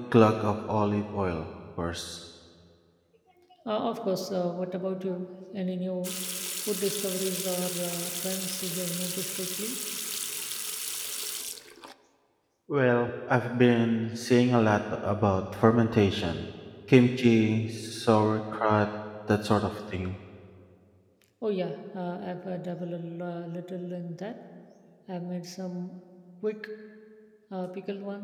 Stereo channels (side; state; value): both; identical; correlation 1.00